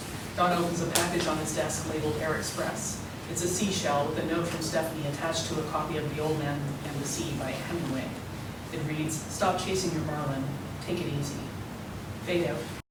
Don opens a package on his desk labeled Air Express. It's a seashell with a note from Stephanie attached to a copy of The Old Man and the Sea by Hemingway. It reads, "Stop chasing your marlin. Take it easy." Fade out.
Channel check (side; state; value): both; identical; correlation 1.00